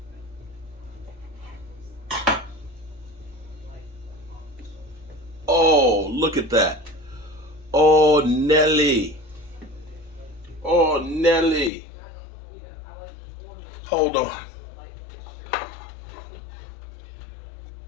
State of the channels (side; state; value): right; drops out; at 11.7 s